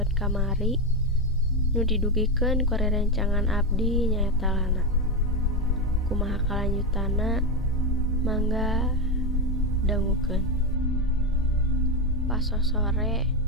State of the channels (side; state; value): both; normal; correlation 0.11